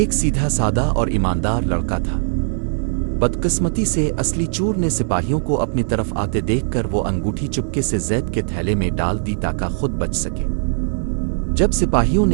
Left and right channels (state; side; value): silent; left; digital silence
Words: سیدھا سادہ اور ایماندار لڑکا تھا۔ بدقسمتی سے اصلی چور نے سپاہیوں کو اپنی طرف آتے دیکھ کر وہ انگوٹھی چپکے سے زید کے تھیلے میں ڈال دی تاکہ خود بچ سکے۔ جب سپاہیوں